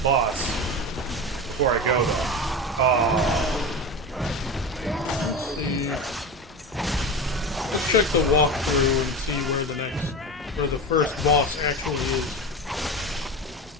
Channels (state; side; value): normal; both; correlation 0.24